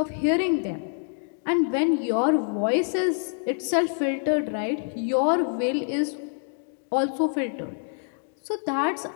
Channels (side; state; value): right; silent; 59 dB below the other